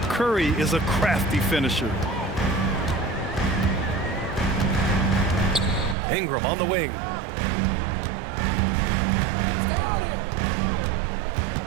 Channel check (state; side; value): drops out; left; at 6.0 s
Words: Curry is a crafty finisher. Ingram on the wing.